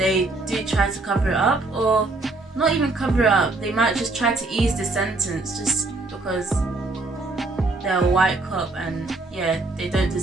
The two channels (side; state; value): left; quieter; 3.2 dB